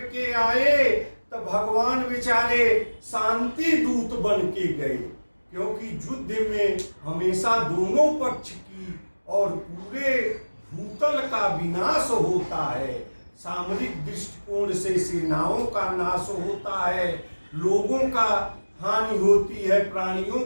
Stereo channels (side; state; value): both; inverted; correlation -1.00